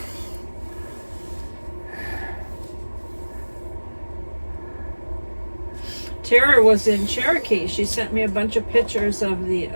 Tara was in Cherokee. She sent me a bunch of pictures of the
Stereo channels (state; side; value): inverted; both; correlation -1.00